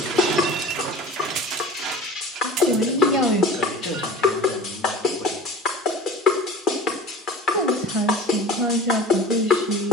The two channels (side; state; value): both; normal; correlation 0.40